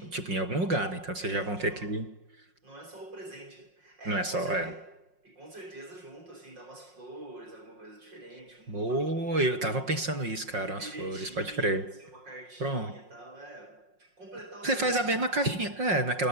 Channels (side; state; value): left; late; 5.5 ms